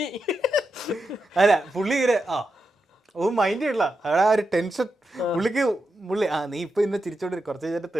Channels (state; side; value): normal; both; correlation 0.87